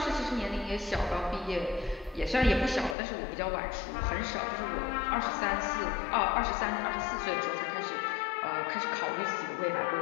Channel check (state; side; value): drops out; right; at 3.0 s